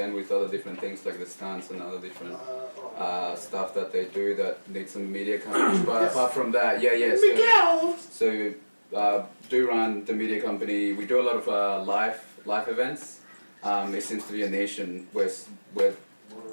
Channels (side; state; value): both; inverted; correlation -1.00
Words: with other different things like the stunts and other different stuff that they do that need some media coverage. But apart from that, Miguel. So do run the media company. We do a lot of live events. It seems to be a nation where